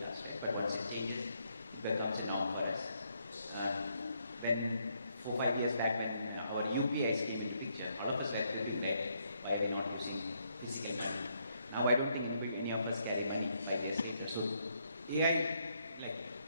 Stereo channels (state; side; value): inverted; both; correlation -0.74